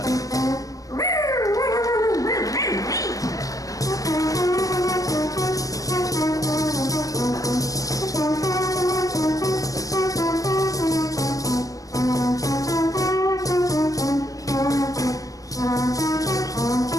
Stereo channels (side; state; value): right; late; 0.17 ms